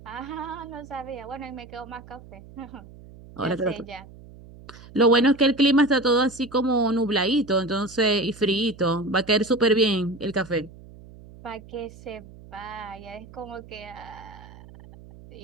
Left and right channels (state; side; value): noise; right; hum, 19 dB below the sound